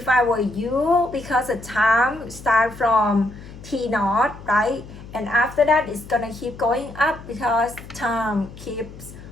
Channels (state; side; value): noise; left; hum, 16 dB below the sound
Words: I were you, because the time start from t naught, right? And after that, it's gonna keep going up because time keeps